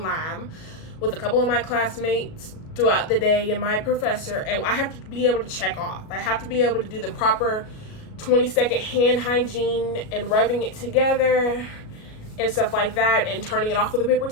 lab with a couple of my classmates throughout the day and my professor, and I have to be able to check off. I have to be able to do the proper 20-second hand hygiene and rubbing it together and stuff like that, and turning it off with a paper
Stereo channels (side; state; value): right; late; 37 ms